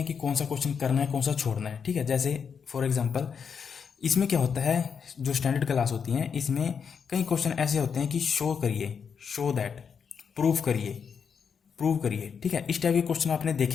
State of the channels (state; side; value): quieter; right; 6.6 dB